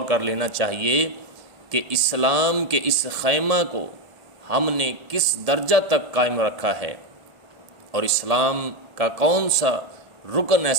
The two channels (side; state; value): left; late; 1.7 ms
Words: کر لینا چاہیے کہ اسلام کے اس خیمہ کو ہم نے کس درجہ تک قائم رکھا ہے، اور اسلام کا کون سا رکن